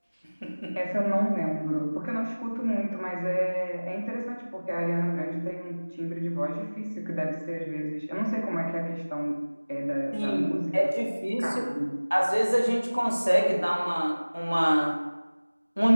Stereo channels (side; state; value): both; inverted; correlation -1.00